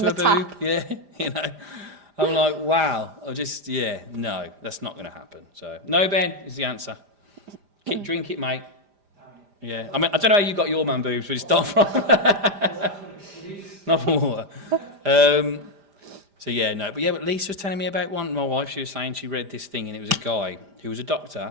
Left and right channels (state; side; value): late; left; 5.0 ms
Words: a the boob. tap. Yeah, I'm like, wow. No, that's not going to happen. So, no, Ben, is the answer. Drink it, mate. Yeah, I mean, I don't know how you got your man boobs, but it's not from... not from water. So, yeah, no. But Lisa was telling me about one. My wife, she was saying she read this thing and it was a guy who was a